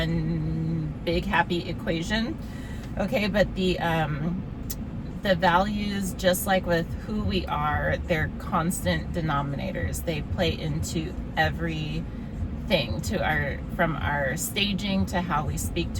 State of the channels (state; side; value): identical; both; correlation 1.00